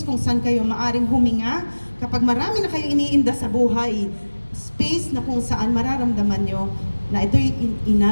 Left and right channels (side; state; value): both; inverted; correlation -1.00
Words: kung saan kayo maaring huminga, kapag marami na kayo iniinda sa buhay, space na kung saan mararamdaman nyo na ito'y